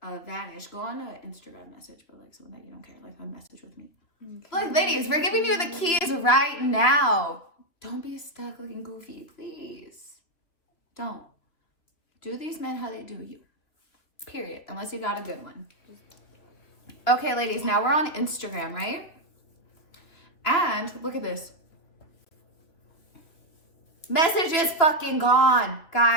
vanish. Go on an Instagram message, but like someone that you don't care. Like a message with me. Okay. Look, ladies, we're giving you the keys right now. Don't be stuck looking goofy, please. Don't. Do these men how they do you. Period. Unless you got a good one. Okay, ladies, now we're on Instagram, right? And look at this. Message is fucking gone.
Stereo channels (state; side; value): late; right; 2.9 ms